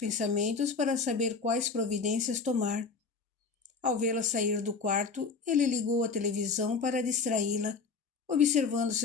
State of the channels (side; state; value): right; quieter; 4.7 dB